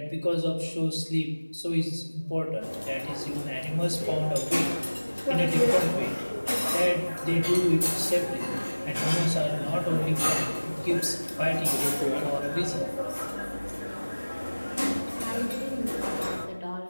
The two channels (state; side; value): inverted; both; correlation -1.00